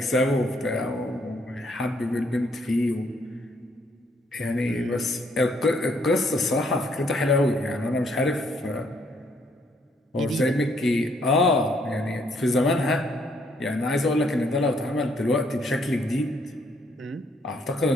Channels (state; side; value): normal; both; correlation 0.69